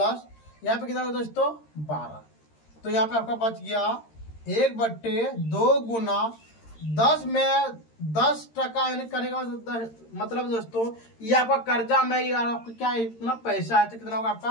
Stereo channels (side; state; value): right; late; 13 ms